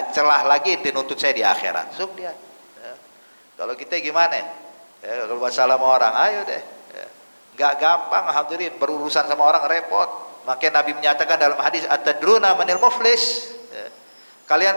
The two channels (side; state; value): both; inverted; correlation -1.00